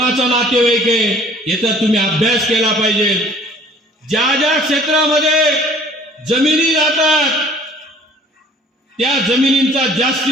नातेवाईक आहे याचा तुम्ही अभ्यास केला पाहिजे. ज्या ज्या क्षेत्रामध्ये जमिनी जातात त्या जमिनींचा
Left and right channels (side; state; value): both; normal; correlation 0.53